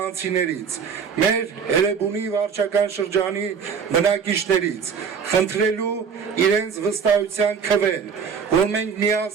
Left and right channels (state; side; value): quieter; left; 6.4 dB